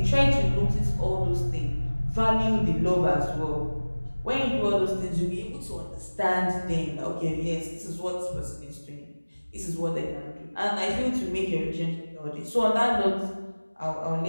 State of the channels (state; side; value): inverted; both; correlation -1.00